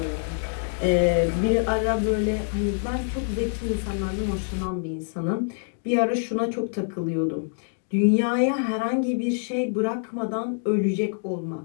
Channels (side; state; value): right; silent; digital silence